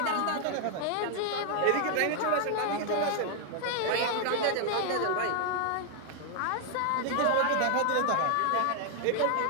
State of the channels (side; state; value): both; different; correlation 0.00